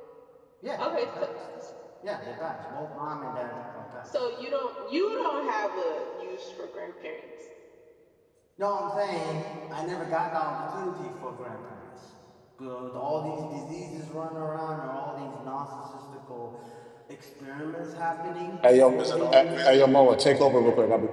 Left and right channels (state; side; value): identical; both; correlation 1.00